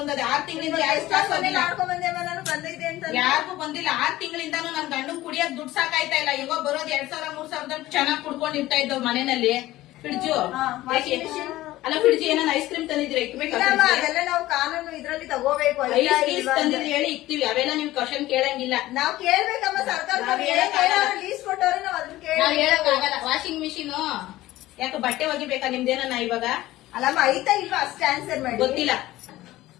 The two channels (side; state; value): right; quieter; 16.4 dB